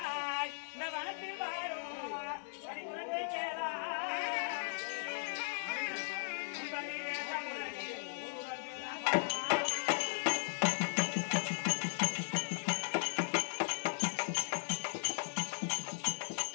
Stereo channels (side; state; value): right; silent; digital silence